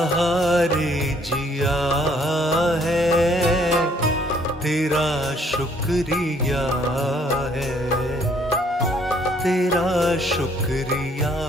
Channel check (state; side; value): normal; both; correlation 0.63